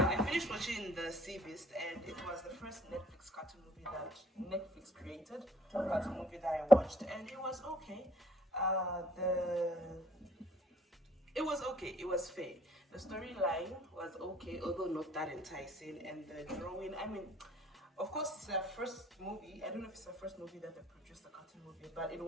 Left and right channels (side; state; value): both; normal; correlation 0.60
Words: I finished watching The Sea Beast, and it was the first Netflix cartoon movie that Netflix created. Cartoon movie that I watched, and it was okay. It was okay. It was fair. The storyline was okay, although not that enticing, and the drawing. I mean, of course, it's their first movie. I don't know if it's the first movie that they produced, a cartoon movie, but it